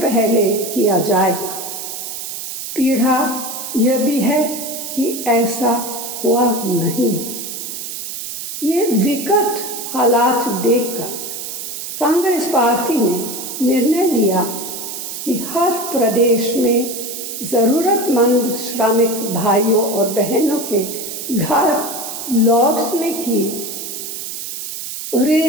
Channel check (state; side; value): noise; right; hiss, 7 dB below the sound